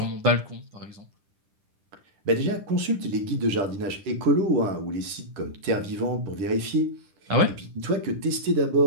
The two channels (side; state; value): left; late; 10 ms